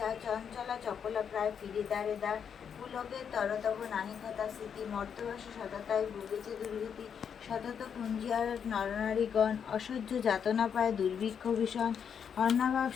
চঞ্চলা চপলা প্রায় ফিরে দ্বারে দ্বার। পুলকের তরতব নাহি কথা স্মৃতি, মর্তবাসে সততায় ভুগেছে দুর্গতি। সতত কুঞ্জিয়ার নরনারীগণ, অসহ্য যাতনা পায় দুর্ভিক্ষ ভীষণ। অন্নাভাব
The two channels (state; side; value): quieter; right; 7.4 dB